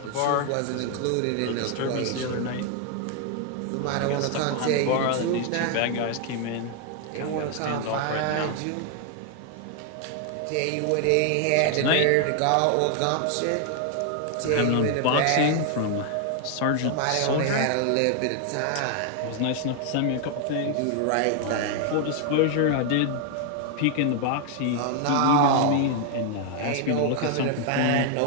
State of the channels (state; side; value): different; both; correlation 0.00